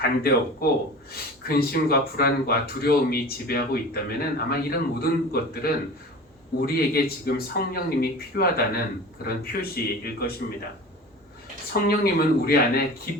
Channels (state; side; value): normal; both; correlation 0.37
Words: 근심과 불안과 두려움이 지배하고 있다면은 아마 이런 모든 것들은 우리에게 지금 성령님이 필요하다는 그런 표시일 것입니다. 성령님은 우리 안에